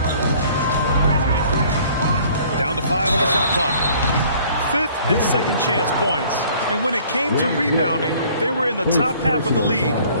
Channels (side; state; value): both; inverted; correlation -0.55